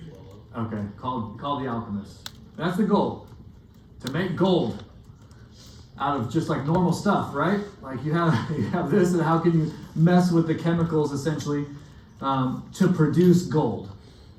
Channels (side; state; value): both; identical; correlation 1.00